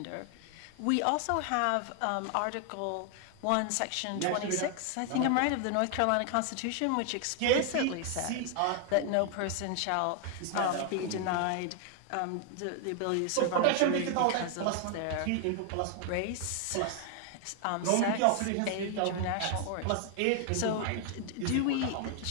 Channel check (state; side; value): different; both; correlation 0.00